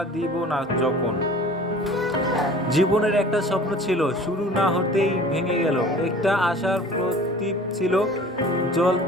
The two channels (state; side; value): normal; both; correlation 0.45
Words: দিব না যখন। জীবনের একটা স্বপ্ন ছিল, শুরু না হতেই ভেঙে গেল। একটা আশার প্রদীপ ছিল,